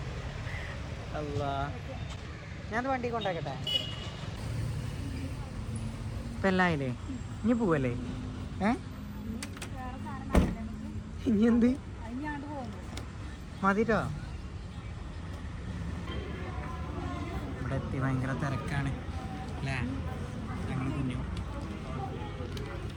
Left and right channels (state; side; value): identical; both; correlation 1.00